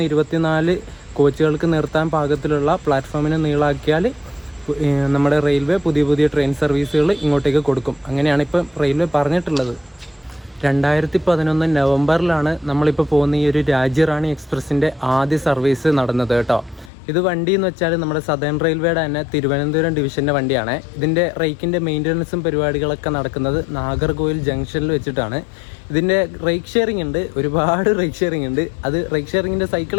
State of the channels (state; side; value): drops out; right; at 16.9 s